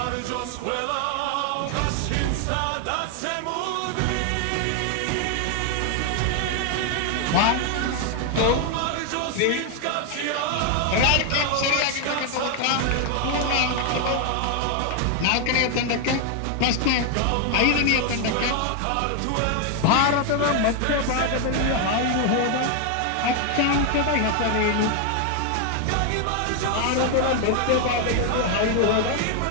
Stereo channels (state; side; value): different; both; correlation 0.01